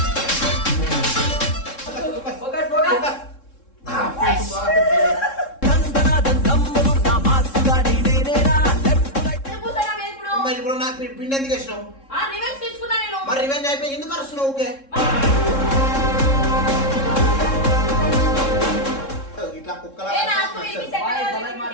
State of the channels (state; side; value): late; right; 3.7 ms